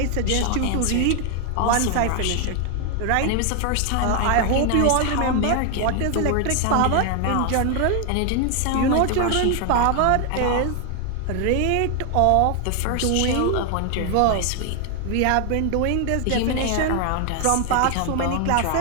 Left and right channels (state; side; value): different; both; correlation 0.00